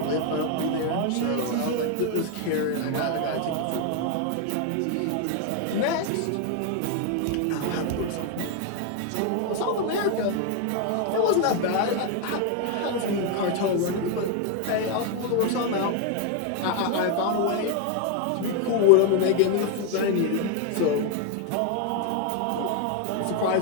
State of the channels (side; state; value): both; different; correlation 0.01